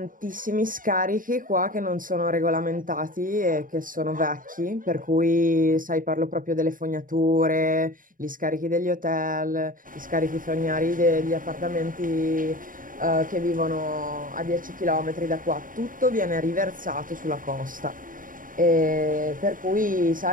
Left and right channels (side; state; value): left; late; 0.39 ms